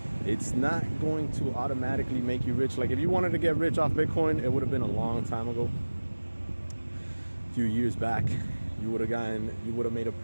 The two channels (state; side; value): inverted; both; correlation -1.00